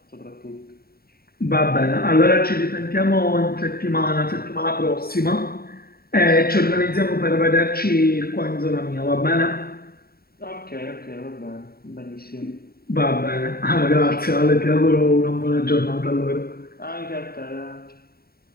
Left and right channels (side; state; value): right; late; 0.44 ms